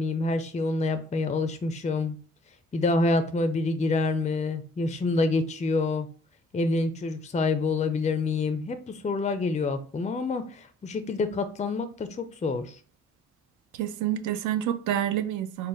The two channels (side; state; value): both; normal; correlation 0.55